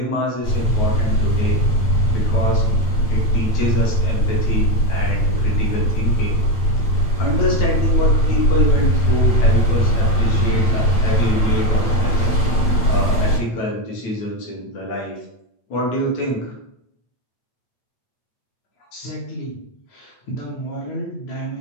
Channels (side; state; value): right; late; 8.7 ms